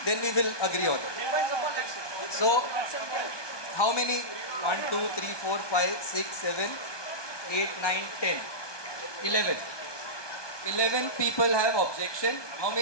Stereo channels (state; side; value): late; right; 1.2 ms